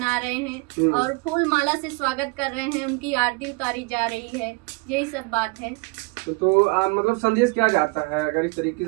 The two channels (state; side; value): quieter; left; 27.7 dB